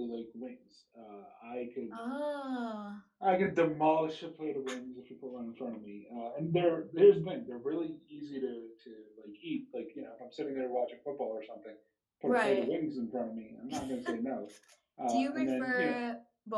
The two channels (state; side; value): identical; both; correlation 1.00